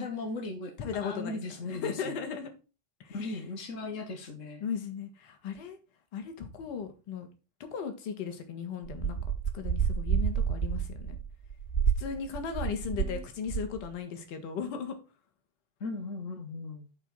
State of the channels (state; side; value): late; right; 4.0 ms